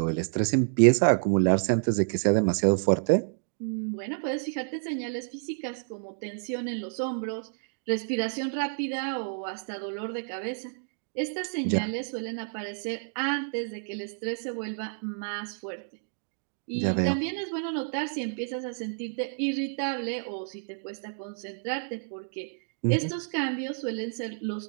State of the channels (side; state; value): left; silent; digital silence